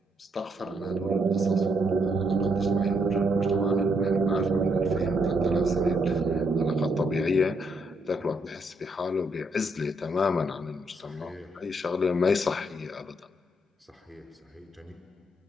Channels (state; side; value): normal; both; correlation 0.75